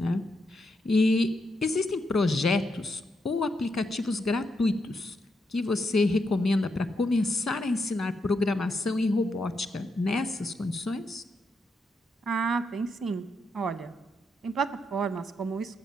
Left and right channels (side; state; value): both; normal; correlation 0.81